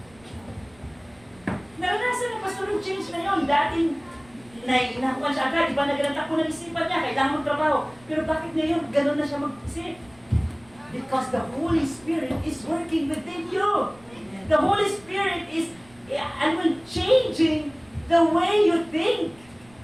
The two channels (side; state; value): right; noise; rumble, 28 dB below the sound